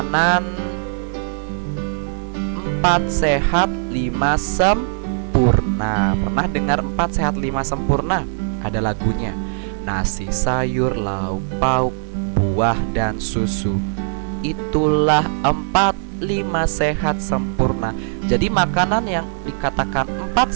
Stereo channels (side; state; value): left; silent; 66 dB below the other